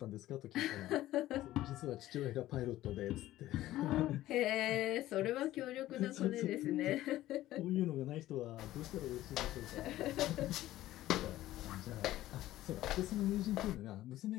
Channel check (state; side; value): quieter; right; 15.0 dB